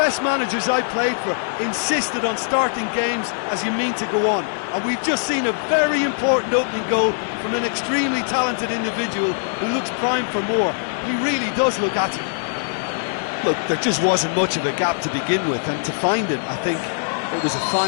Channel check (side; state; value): right; silent; digital silence